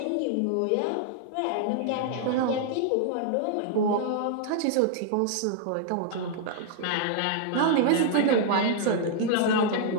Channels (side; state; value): both; different; correlation -0.01